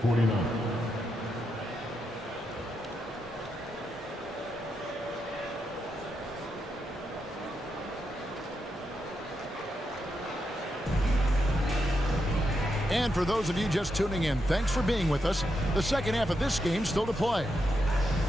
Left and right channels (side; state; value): both; normal; correlation 0.84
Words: 49. And for those of you just tuning in, thanks for being with us. The second half of this game still to play.